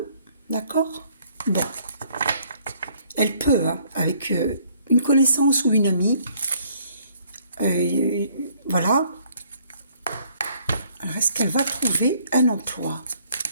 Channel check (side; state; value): both; inverted; correlation -0.63